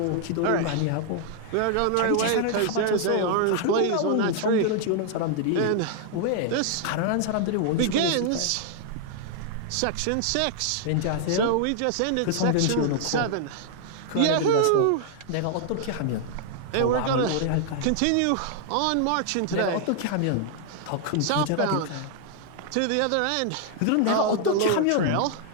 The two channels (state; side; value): different; both; correlation 0.00